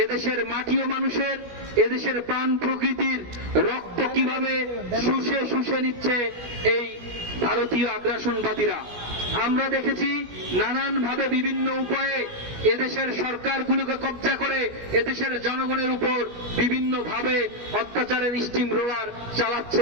এদেশের মাটি ও মানুষের, এদেশের প্রাণ প্রকৃতির রক্ত কিভাবে শুষে শুষে নিচ্ছে এই ভারতীয় আগ্রাসনবাদীরা। আমরা দেখেছি নানানভাবে বিভিন্ন উপায়ে এদেশের সরকারগুলোকে কব্জা করে এদেশের জনগণের উপর বিভিন্নভাবে অত্যাচারের স্টিম রোলার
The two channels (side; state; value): left; late; 17 ms